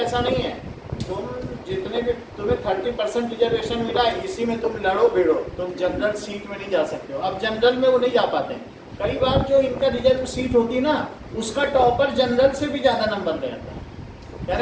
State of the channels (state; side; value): identical; both; correlation 1.00